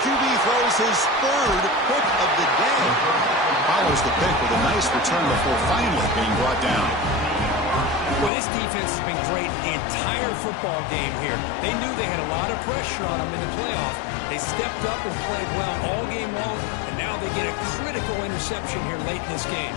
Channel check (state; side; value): drops out; right; at 8.3 s